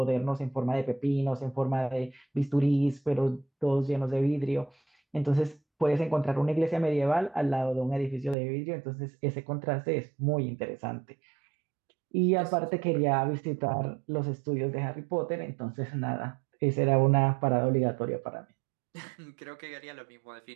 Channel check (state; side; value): drops out; left; at 8.3 s